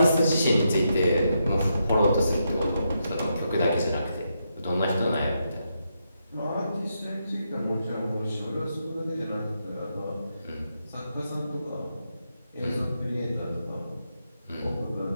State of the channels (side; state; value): both; inverted; correlation -0.82